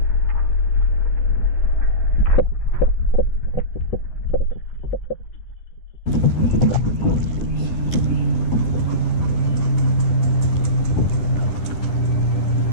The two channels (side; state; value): right; late; 11 ms